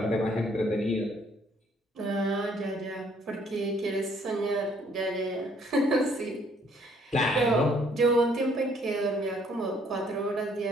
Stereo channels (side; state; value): both; normal; correlation 0.64